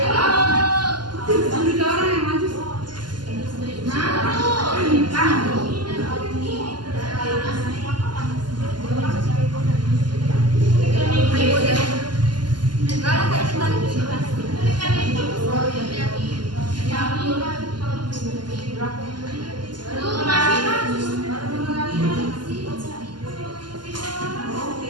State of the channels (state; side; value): late; left; 0.71 ms